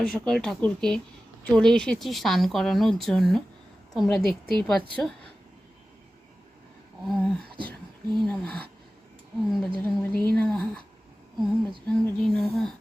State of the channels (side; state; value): both; normal; correlation 0.95